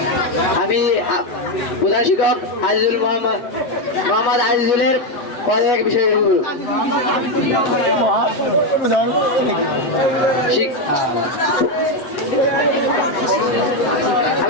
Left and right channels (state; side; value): late; right; 8.3 ms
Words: আমি প্রধান শিক্ষক আজিজুল মোহাম্মদ আজিজুলের পদত্যাগ বিষয়ে বলব।